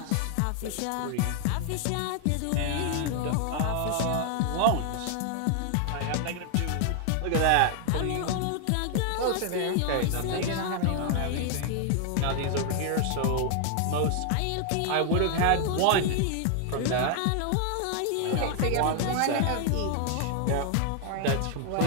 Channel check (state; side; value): different; both; correlation 0.00